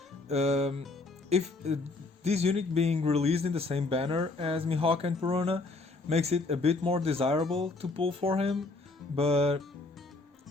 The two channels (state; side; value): quieter; right; 3.4 dB